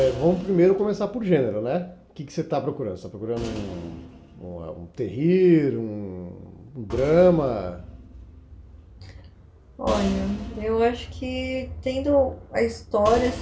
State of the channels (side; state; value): both; identical; correlation 1.00